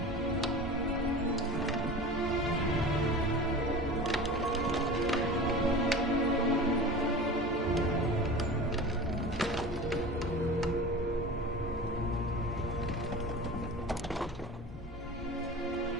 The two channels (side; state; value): both; normal; correlation 0.33